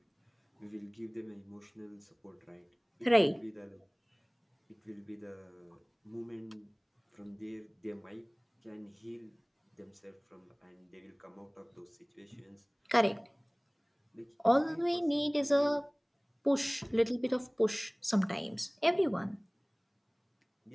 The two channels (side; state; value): both; identical; correlation 1.00